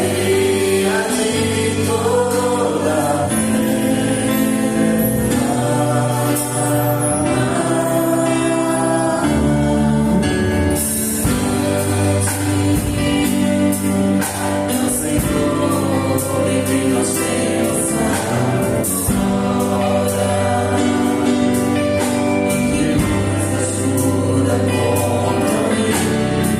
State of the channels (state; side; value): identical; both; correlation 1.00